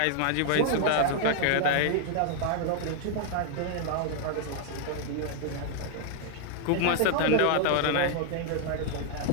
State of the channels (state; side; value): different; both; correlation -0.01